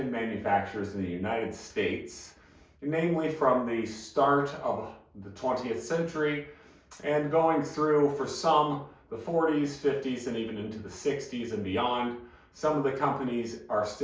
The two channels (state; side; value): identical; both; correlation 1.00